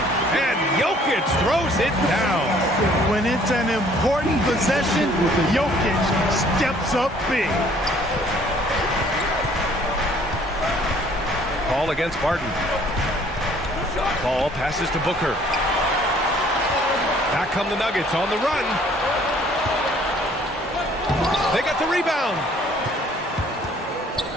and Jokic throws it down. When it's an important possession, Jokic steps up big. Paul against Barton. Paul passes to Booker. Back come the Nuggets on the run. They got the rebound.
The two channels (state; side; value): normal; both; correlation 0.58